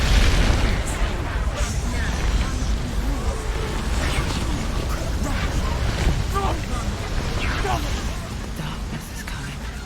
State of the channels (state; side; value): identical; both; correlation 1.00